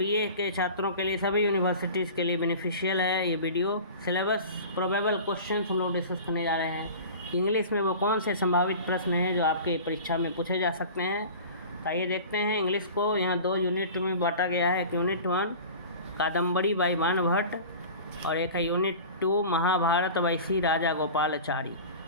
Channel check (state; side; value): inverted; both; correlation -0.37